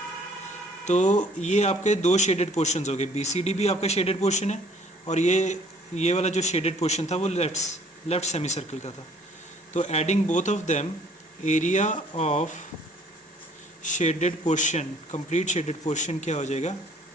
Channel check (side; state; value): both; normal; correlation 0.58